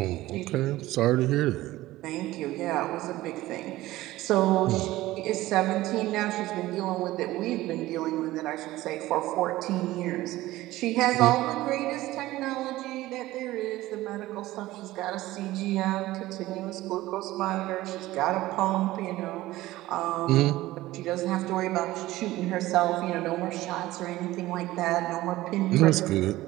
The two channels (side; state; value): left; quieter; 16.9 dB